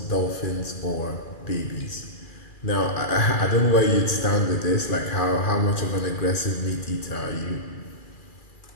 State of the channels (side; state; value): right; late; 2.4 ms